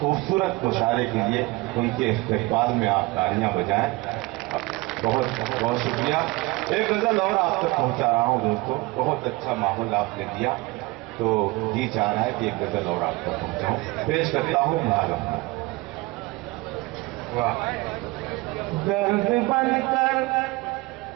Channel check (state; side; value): quieter; left; 22.6 dB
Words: مشاعرے کے لیے ان کے استقبال میں آپ تالیاں بجائیں. بہت بہت شکریہ. ایک غزل اور آپ تک پہنچا رہا ہوں دوستو. بہت اچھا ماحول آپ نے دیا تو جی چاہ رہا ہے کہ ایک غزل اور آپ تک پہنچاؤں. پیش کرتا ہوں معلوم. درد بن کر